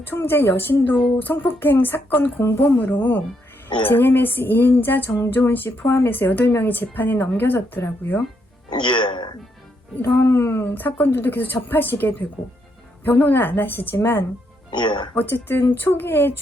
총재 여신도 성폭행 사건 공범으로 JMS 2인자 정조은 씨 포함해서 8명이 재판에 넘겨졌더라고요. 이런 사건들도 계속 접하시게 되고 변호는 안 하시지만 어쨌든 초기에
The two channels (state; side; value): normal; both; correlation 0.77